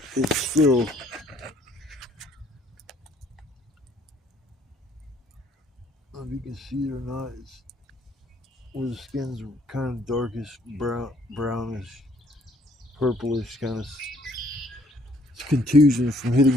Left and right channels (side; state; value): both; normal; correlation 0.63